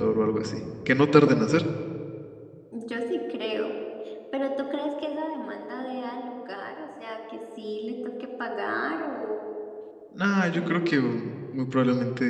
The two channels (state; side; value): identical; both; correlation 1.00